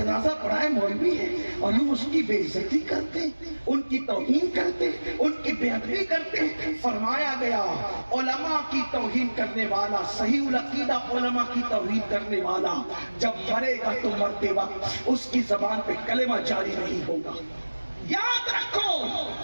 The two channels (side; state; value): both; inverted; correlation -1.00